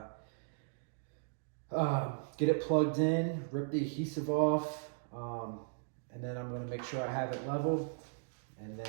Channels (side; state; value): left; silent; digital silence